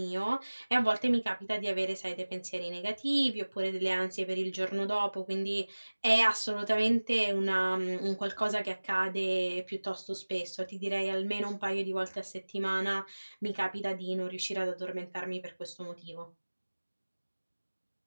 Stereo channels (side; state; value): both; inverted; correlation -1.00